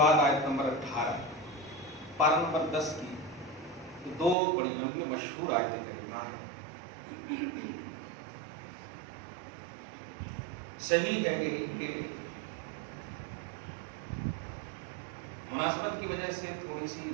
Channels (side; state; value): left; drops out; at 4.4 s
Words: آیت نمبر 18، پارہ نمبر 10 کی دو بڑی لمبی مشہور آیت کریمہ ہیں۔ صحیح ہے یہی کہ مناسبت کی وجہ سے تھوڑی سی